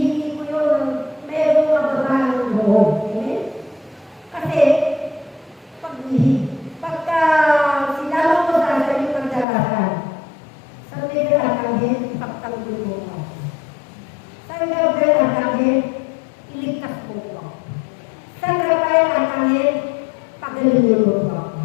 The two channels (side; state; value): right; drops out; at 9.5 s